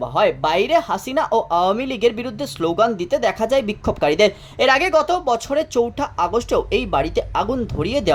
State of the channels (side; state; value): both; identical; correlation 1.00